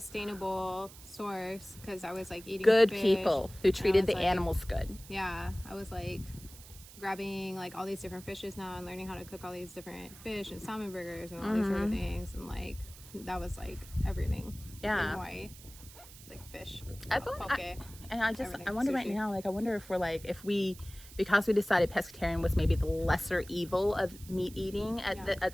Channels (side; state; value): right; noise; hiss, 18 dB below the sound